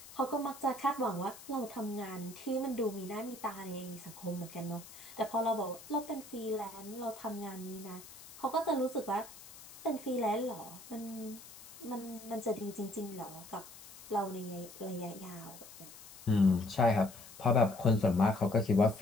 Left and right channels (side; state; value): left; noise; hiss, 17 dB below the sound